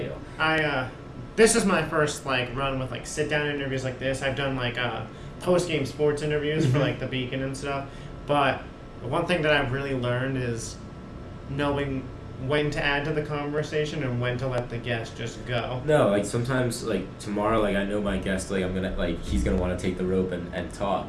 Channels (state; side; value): identical; both; correlation 1.00